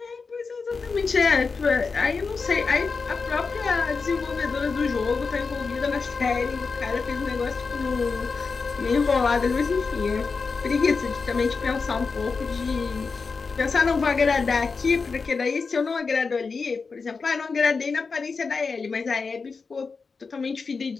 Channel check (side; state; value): right; quieter; 4.7 dB